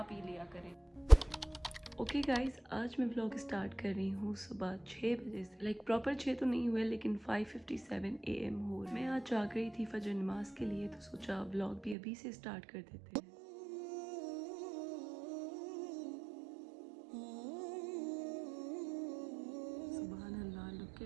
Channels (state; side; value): drops out; left; at 12.0 s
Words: पी लिया करें। ओके गाइज, आज मैं व्लॉग स्टार्ट कर रही हूँ सुबह 6 बजे से। लाइक प्रॉपर 6 तो नहीं हुए, लेकिन 5:57 AM हो। मैं आज जाग रही थी फजर नमाज के लिए, तो सोचा व्लॉग भी अभी से स्टार्ट कर देते हैं। सुभान अल्लाह, look